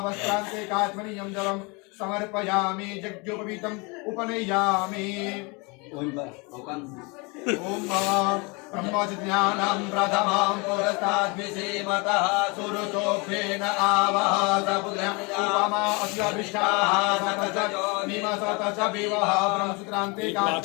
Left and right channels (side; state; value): right; quieter; 29.3 dB